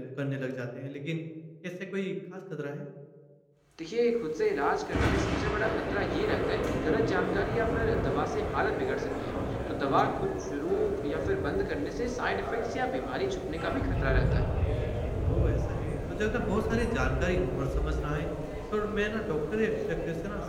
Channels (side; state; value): both; identical; correlation 1.00